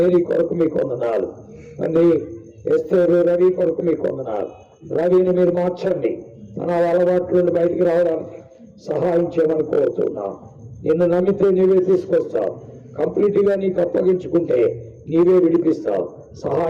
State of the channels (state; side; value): identical; both; correlation 1.00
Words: కొరకు మీకు వందనాలు. తండ్రి ఎస్తేరు, రవి కొరకు మీకు వందనాలు. రవిని మీరు మార్చండి, తన అలవాట్ల నుండి బయటికి రావడానికి సహాయం చేయమని కోరుతున్నాం. నిన్ను నమ్మితే నీవే తీసుకొస్తావు, కంప్లీట్ గా నీకు అప్పగించుకుంటే నీవే విడిపిస్తావు.